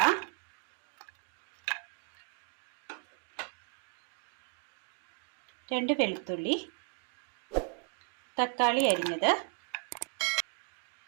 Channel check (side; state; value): left; quieter; 39.5 dB